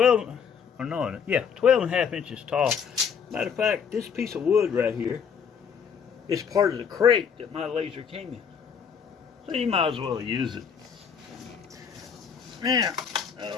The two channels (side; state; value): right; quieter; 6.9 dB